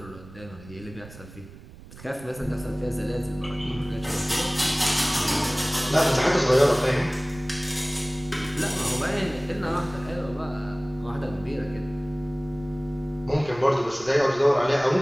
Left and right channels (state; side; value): noise; right; rumble, 18 dB below the sound